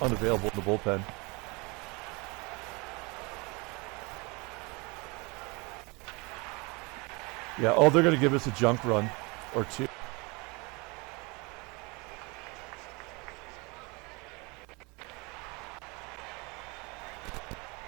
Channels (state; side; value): quieter; left; 28.0 dB